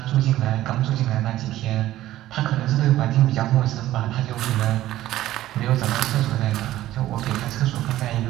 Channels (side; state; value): left; quieter; 14.5 dB